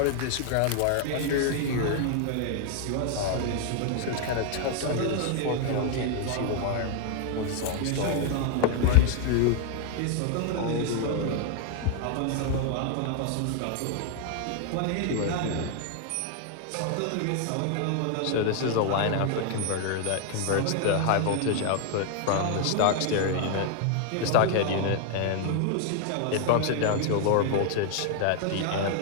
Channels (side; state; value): both; different; correlation 0.00